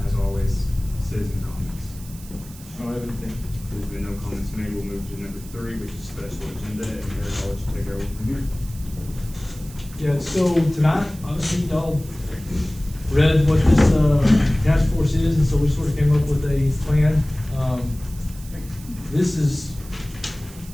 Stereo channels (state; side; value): noise; right; hiss, 19 dB below the sound